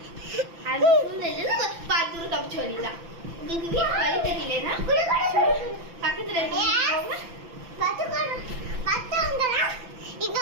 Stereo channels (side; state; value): left; late; 5.9 ms